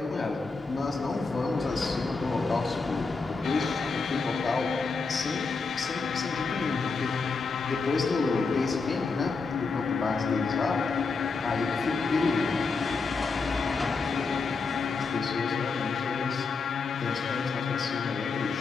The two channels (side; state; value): right; quieter; 4.4 dB